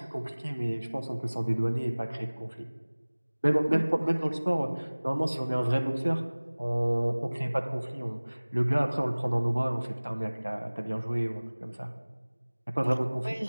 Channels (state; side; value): inverted; both; correlation -1.00